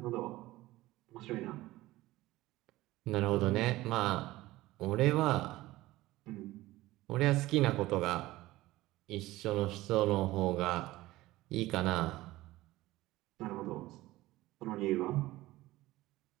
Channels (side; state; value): left; quieter; 17.6 dB